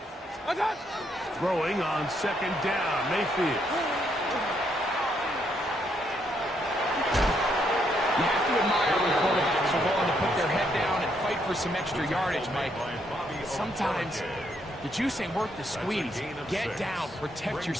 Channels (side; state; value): both; normal; correlation 0.74